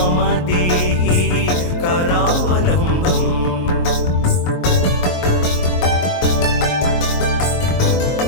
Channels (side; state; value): right; late; 22 ms